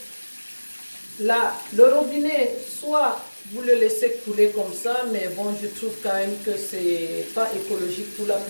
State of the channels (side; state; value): both; inverted; correlation -1.00